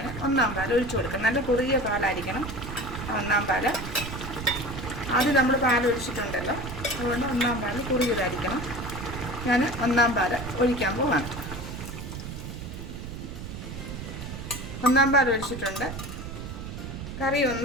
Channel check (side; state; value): right; noise; rumble, 8 dB below the sound